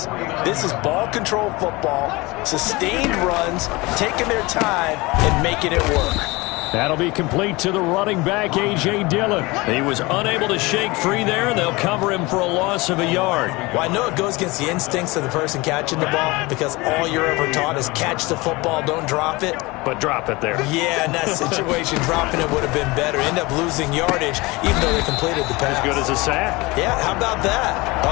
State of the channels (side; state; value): right; quieter; 23.1 dB